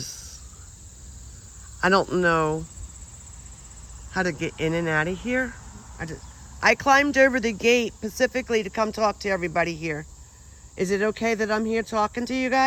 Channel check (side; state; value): both; identical; correlation 1.00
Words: I don't know how to get in and out of here. I climbed over the gate specifically to come talk to everybody here. Is it okay that I'm here talking to you